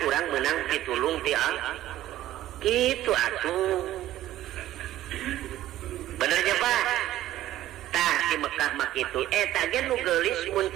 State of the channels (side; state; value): left; quieter; 13.9 dB